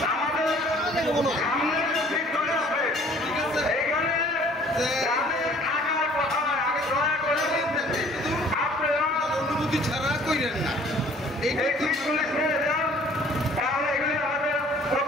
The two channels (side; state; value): both; normal; correlation 0.55